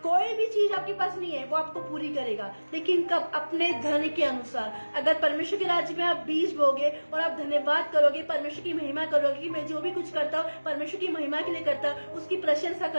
कोई भी चीज आपके पास नहीं है, वो आपको पूरी करेगा। लेकिन कब? अपने धन के अनुसार। अगर परमेश्वर के राज्य में आप बीज बोगे और आप धन्यवाद करोगे, परमेश्वर की महिमा करोगे कि मैं जो भी कुछ करता हूँ परमेश्वर की महिमा के लिए करता हूँ, उसकी प्रशंसा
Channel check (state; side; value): inverted; both; correlation -1.00